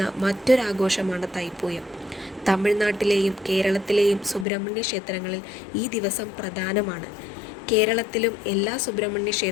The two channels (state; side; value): drops out; right; at 4.5 s